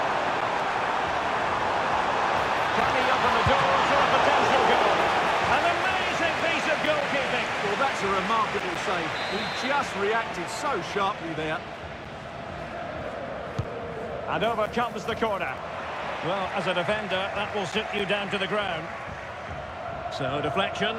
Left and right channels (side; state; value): both; identical; correlation 1.00